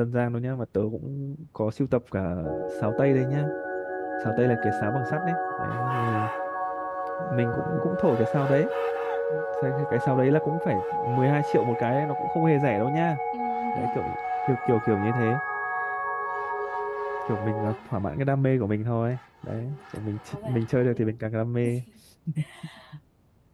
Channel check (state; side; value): identical; both; correlation 1.00